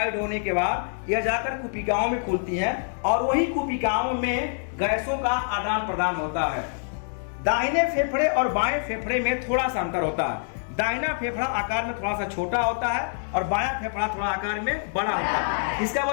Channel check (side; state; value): right; silent; digital silence